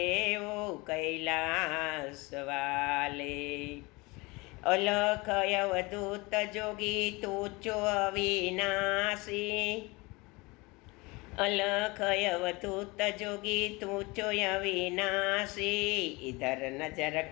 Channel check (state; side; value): quieter; right; 24.8 dB